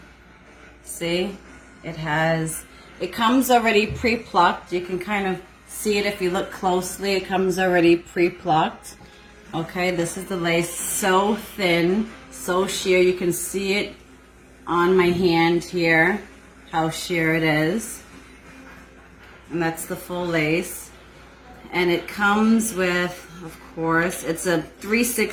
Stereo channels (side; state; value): both; identical; correlation 1.00